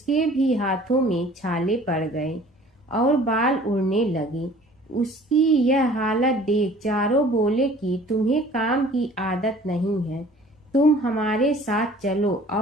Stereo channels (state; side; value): normal; both; correlation 0.50